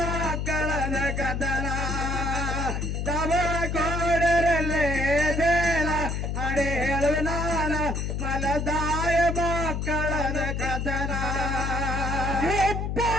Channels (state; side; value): noise; left; hum, 2 dB below the sound